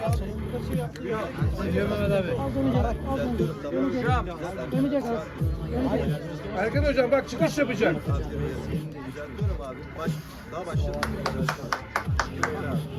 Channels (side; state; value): both; identical; correlation 1.00